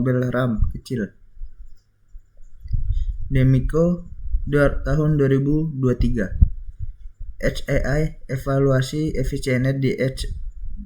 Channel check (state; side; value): identical; both; correlation 1.00